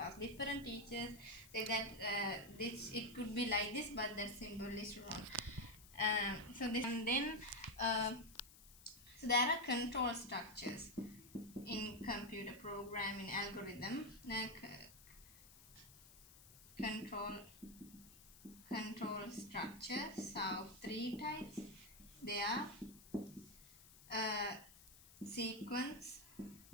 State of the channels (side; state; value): left; noise; hiss, 20 dB below the sound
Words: Different teachers say that this it could be like this, but that symbol is wrong. So this, and then so there are control structures in computer programming algorithm. Control structures of three types. They are sequence,